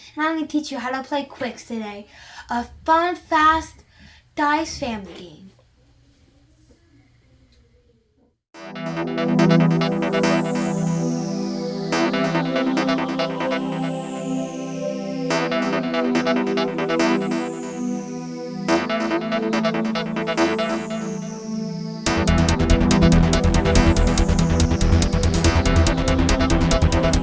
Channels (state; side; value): identical; both; correlation 1.00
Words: and I'm going to teach you how to play QWIXX today, a fun, fast dice family game.